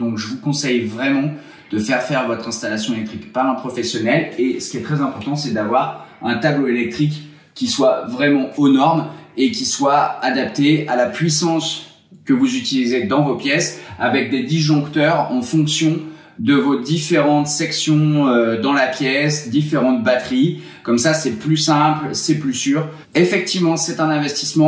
je vous conseille vraiment de faire votre installation électrique par un professionnel. Et ce qui est très important, c'est d'avoir un tableau électrique qui soit vraiment aux normes et qui soit adapté à la puissance que vous utilisez dans vos pièces, avec des disjoncteurs en fonction de vos différentes sections dans la pièce, différentes batteries. Comme ça, c'est plus simple, c'est plus sûr. Effectivement, c'est un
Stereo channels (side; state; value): both; identical; correlation 1.00